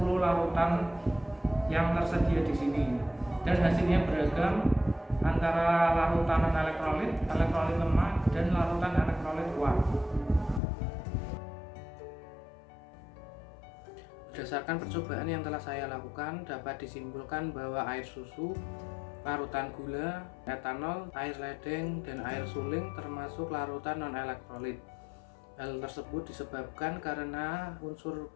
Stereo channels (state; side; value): drops out; right; at 10.6 s